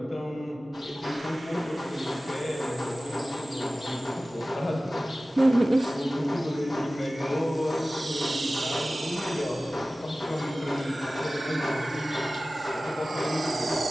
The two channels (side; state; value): both; normal; correlation 0.97